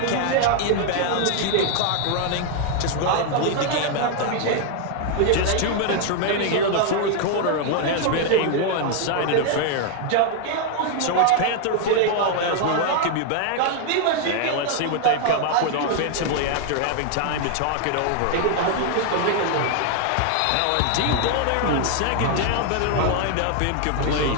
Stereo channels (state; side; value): different; both; correlation 0.00